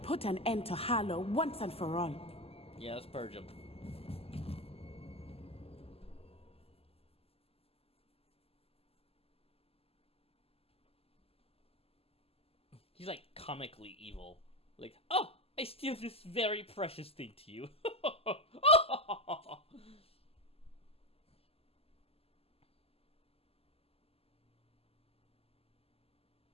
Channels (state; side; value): late; right; 0.29 ms